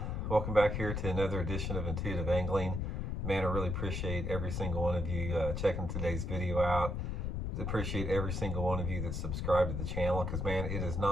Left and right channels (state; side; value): noise; left; rumble, 2 dB below the sound